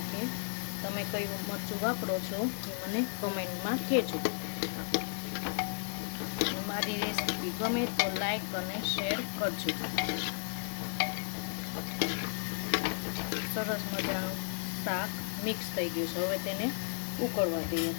તમે કયું મરચું વાપરો છો એ મને કમેન્ટમાં કહેજો। મારી રેસીપી ગમે તો લાઈક અને શેર કરજો। સરસ મજાનું શાક મિક્સ થઈ ગયું છે। હવે તેને ઉકળવા દઈએ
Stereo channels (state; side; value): silent; right; digital silence